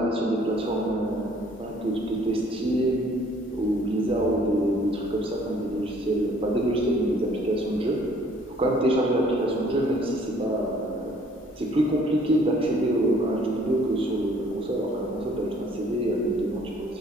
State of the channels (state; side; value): normal; both; correlation 0.59